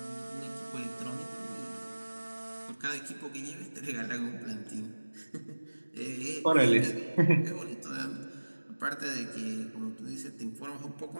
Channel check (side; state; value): both; inverted; correlation -1.00